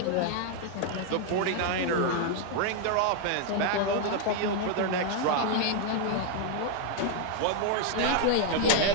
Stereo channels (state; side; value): different; both; correlation 0.00